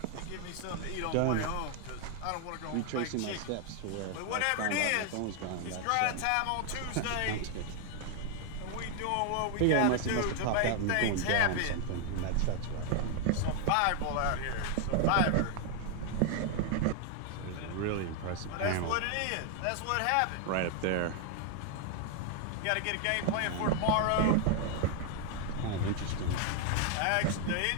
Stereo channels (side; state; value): both; different; correlation 0.00